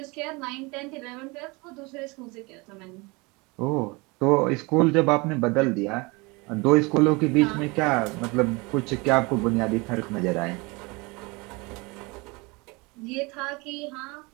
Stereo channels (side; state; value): left; quieter; 26.3 dB